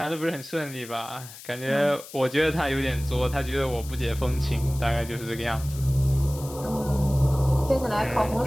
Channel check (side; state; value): left; noise; hiss, 16 dB below the sound